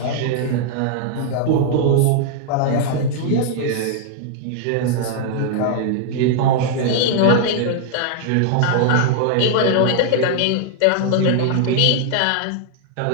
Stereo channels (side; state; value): both; different; correlation -0.01